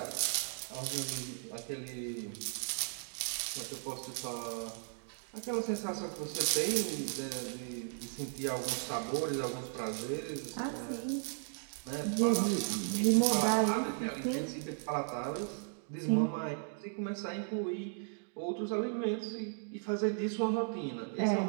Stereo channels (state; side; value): silent; left; digital silence